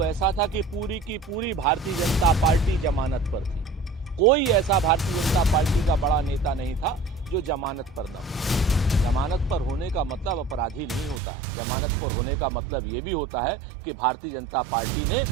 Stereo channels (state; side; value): drops out; left; at 11.2 s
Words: ऐसा था कि पूरी की पूरी भारतीय जनता पार्टी जमानत पर थी। कोई ऐसा भारतीय जनता पार्टी का बड़ा नेता नहीं था जो जमानत पर न हो। जमानत पर होने का मतलब अपराधी नहीं होता। जमानत पर होने का मतलब ये भी होता है कि भारतीय जनता पार्टी